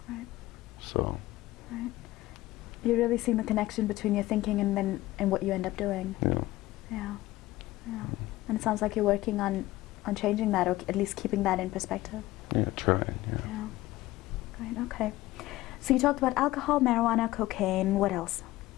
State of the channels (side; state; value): right; quieter; 17.2 dB